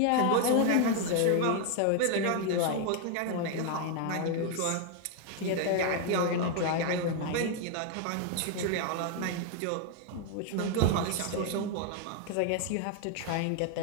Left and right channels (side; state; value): both; different; correlation 0.01